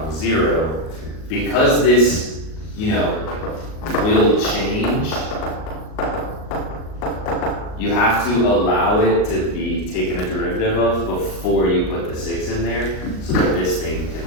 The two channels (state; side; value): late; right; 38 ms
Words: 0, because this, will change, you have to allow it to be taken a derivative of before you put the 6 in there, so that this thing can